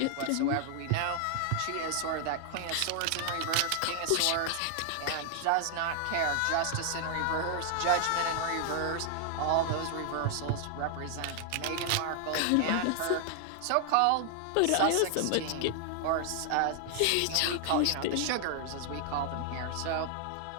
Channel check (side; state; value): both; different; correlation 0.00